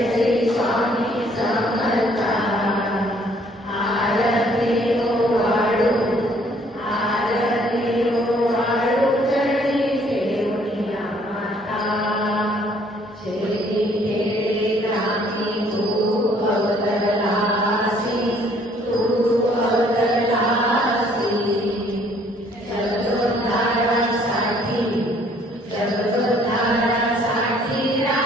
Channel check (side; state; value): both; normal; correlation 0.62